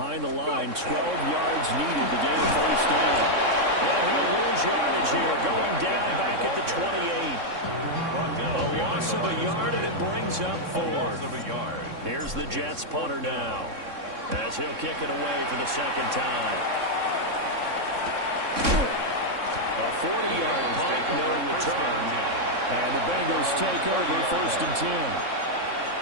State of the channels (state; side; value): late; left; 3.6 ms